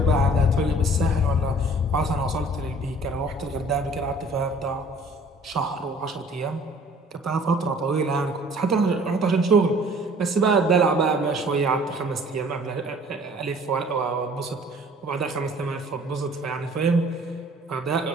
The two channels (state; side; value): normal; both; correlation 0.52